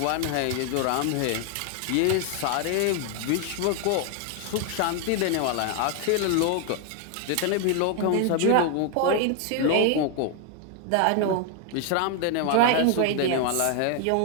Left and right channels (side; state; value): both; different; correlation 0.00